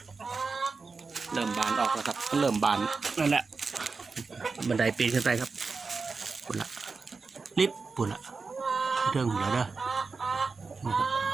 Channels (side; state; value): left; quieter; 4.5 dB